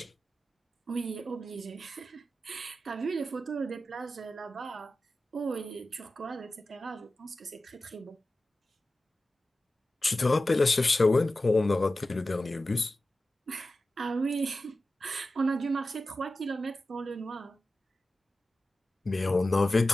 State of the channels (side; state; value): both; normal; correlation 0.94